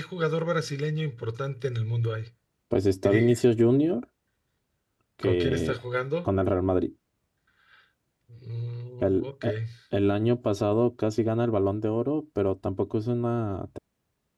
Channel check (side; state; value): both; identical; correlation 1.00